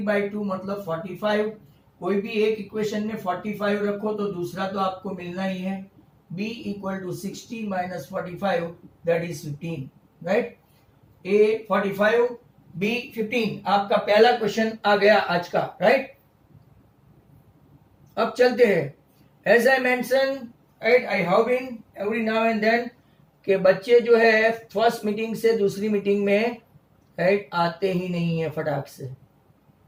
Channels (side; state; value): both; identical; correlation 1.00